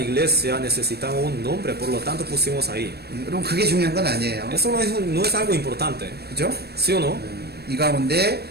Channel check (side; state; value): left; late; 0.47 ms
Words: necesitamos un nombre. Por lo tanto, pusimos ahí. 여러분 그게 중요한 건 아니에요. Eso no es algo importante. 그죠? ¿Sí o no? 이 가운데